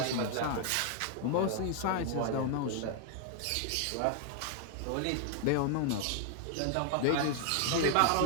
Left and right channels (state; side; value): different; both; correlation 0.00